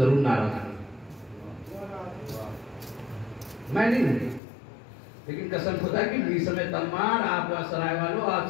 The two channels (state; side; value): drops out; right; at 4.4 s